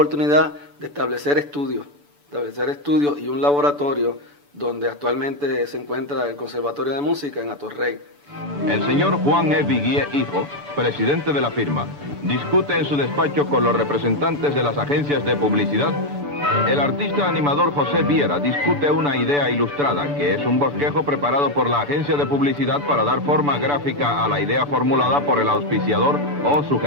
de establecer estudios y un laboratorio donde actualmente se encuentra el Conservatorio de Música en Atorrey. El señor Juan E. Viguié, hijo, presidente de la firma, discute en su despacho con los representantes de las agencias de publicidad. El artista animador José Viera discute una idea ilustrada, que es un bosquejo preparado por la agencia de publicidad para dar forma gráfica a la idea formulada por el auspiciador o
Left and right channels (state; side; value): late; left; 6.9 ms